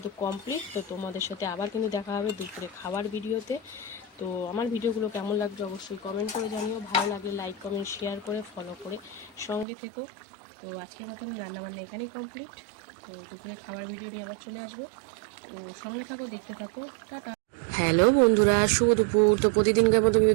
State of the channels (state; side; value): drops out; left; at 9.7 s